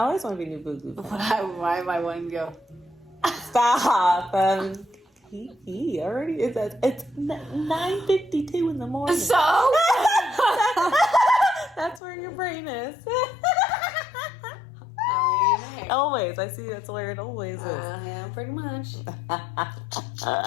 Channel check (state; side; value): drops out; right; at 12.0 s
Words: always want to be new boo boo. Why am I wanting to go? Stop. He already is. It's 9:52 in the morning. So? That's where your brain is. I mean, hey. Always. I see that's where it always is. Yeah, pretty much.